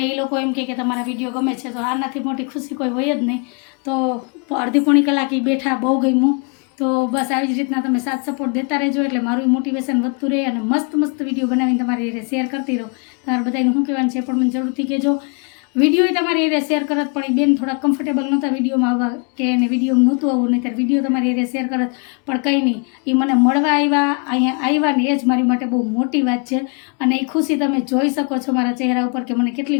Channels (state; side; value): quieter; right; 36.3 dB